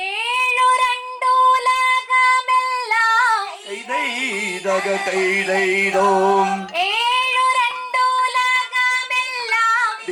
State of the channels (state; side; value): identical; both; correlation 1.00